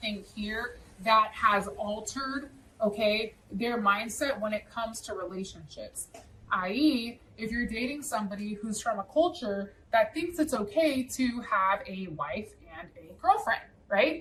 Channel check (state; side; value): identical; both; correlation 1.00